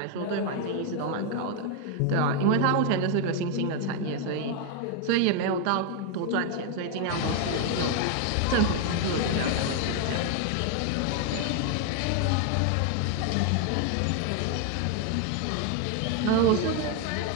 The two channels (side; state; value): both; different; correlation 0.01